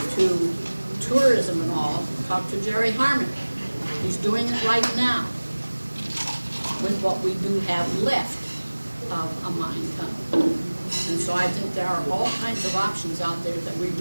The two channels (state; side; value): inverted; both; correlation -1.00